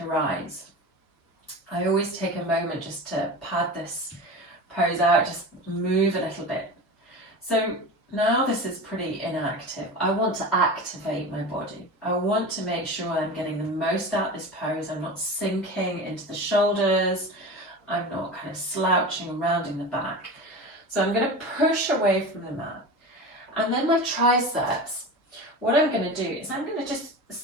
rise. I always take a moment just to pad this pose out, just move a little bit. So now this is pretty inactive. I want to activate my body. I want to make sure I'm getting the most out of this pose. I'm not sinking into the shoulders. I'm not kind of slouching and rounding the back. So I'm going to push away from the mat. And then my triceps, what I'm going to do is I'm going to just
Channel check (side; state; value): both; normal; correlation 0.29